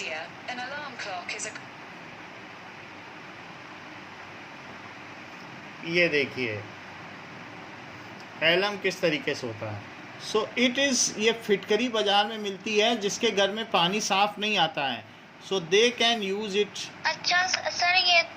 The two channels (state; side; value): identical; both; correlation 1.00